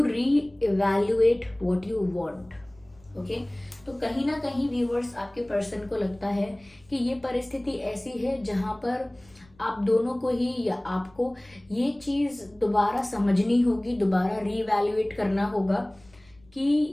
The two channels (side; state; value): left; noise; rumble, 28 dB below the sound